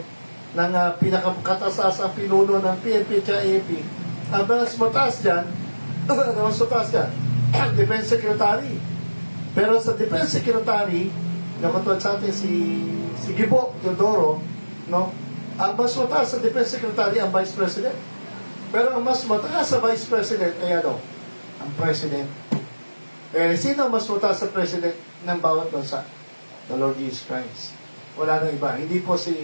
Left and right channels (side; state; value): both; inverted; correlation -1.00